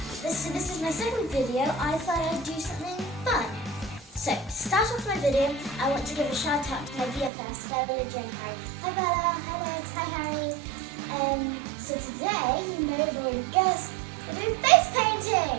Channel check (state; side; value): drops out; left; at 7.3 s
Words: this is my second video. I thought I'd do something fun. So, to start off my video, I want to give a shout out to my VFS, Bella, Jane, Harry. Hi Bella, hi Lex, hi Harry. So today, you may have already guessed, we're doing face painting.